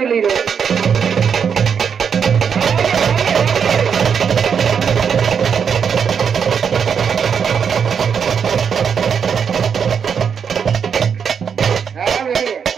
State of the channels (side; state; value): left; quieter; 7.0 dB